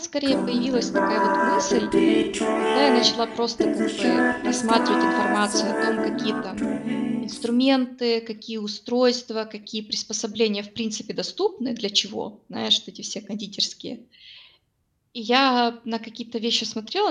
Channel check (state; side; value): identical; both; correlation 1.00